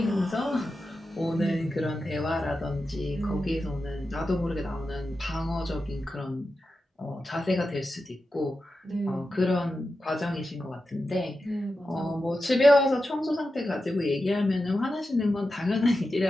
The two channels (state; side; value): normal; both; correlation 0.91